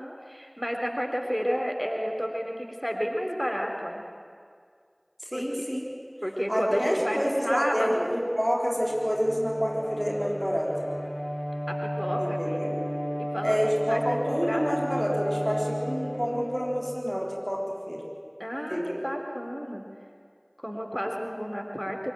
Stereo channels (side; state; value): both; identical; correlation 1.00